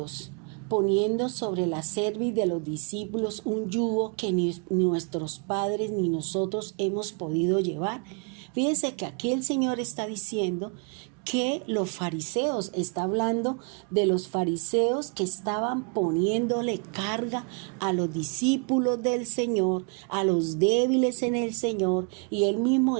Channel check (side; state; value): left; quieter; 37.0 dB